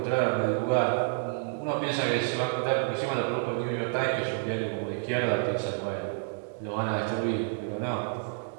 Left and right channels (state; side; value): silent; left; digital silence